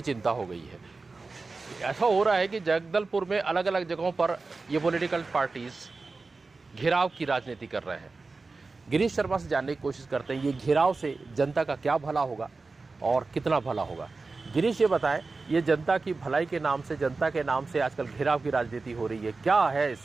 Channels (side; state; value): left; quieter; 3.9 dB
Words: चिंता हो गई है। ऐसा हो रहा है कि जगदलपुर में अलग अलग जगहों पर ये पॉलिटिकल पार्टीज़ घेराव की राजनीति कर रहे हैं। गिरीश शर्मा से जानने की कोशिश करते हैं ये घेराव से जनता का क्या भला होगा और कितना भला होगा। गिरीश, ये बताएं, ये जनता की भलाई के नाम से, जनता के नाम से आजकल घेराव की राजनीति हो रही है, क्या है